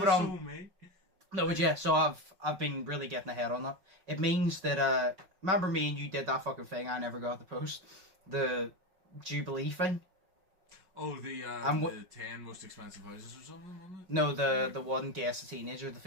No, but yeah, so I've been really getting ahead on that. It means that, remember me and you did that fucking thing I never got to post? The Jubilee thing? Oh, the 10 most expensive houses or something, wasn't it? No, the one guess the teenager, the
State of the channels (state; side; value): late; left; 5.5 ms